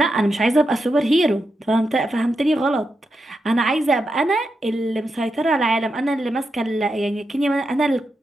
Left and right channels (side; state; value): both; normal; correlation 0.86